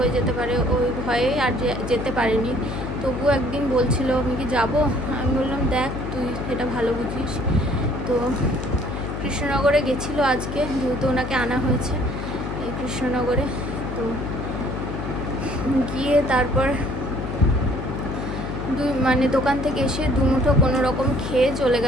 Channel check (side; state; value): left; noise; hum, 5 dB below the sound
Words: যেতে পারে, ওই ভয়ে আর যেতে পারেনি। তবুও একদিন বলছিল আমি কি যাবো, আমি বললাম দেখ তুই এটা ভালো বুঝিস। তো কৃষ্ণনগরে গেছিলো আজকে, যেহেতু ওনাকে আনা হয়েছে এই কৃষ্ণনগরে। তো গিয়ে তারপর মানে দোকান থেকে এসে দুমুঠো কোনো রকম খেয়ে চলে